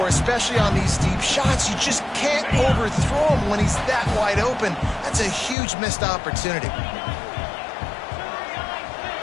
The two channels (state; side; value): drops out; right; at 5.6 s